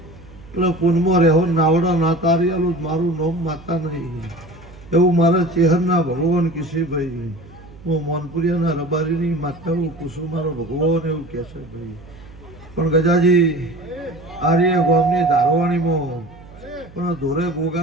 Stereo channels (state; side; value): noise; right; hum, 21 dB below the sound